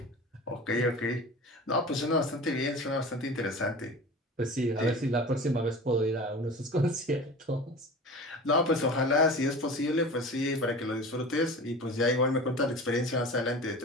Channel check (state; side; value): normal; both; correlation 0.35